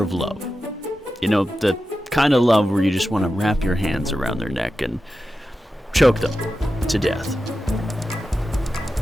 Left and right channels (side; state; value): both; normal; correlation 0.92